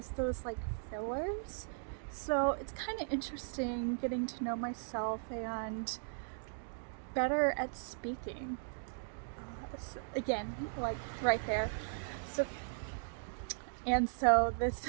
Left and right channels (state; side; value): silent; left; digital silence